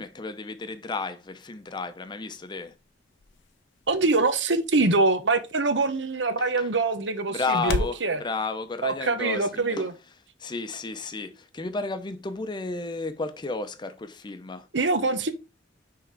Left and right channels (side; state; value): both; normal; correlation -0.06